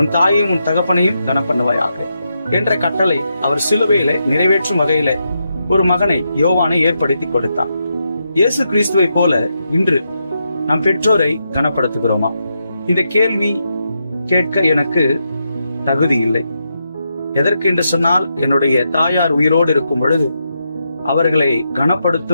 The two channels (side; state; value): both; inverted; correlation -0.83